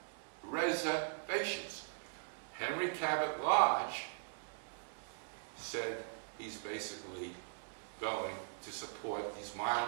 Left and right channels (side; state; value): left; silent; digital silence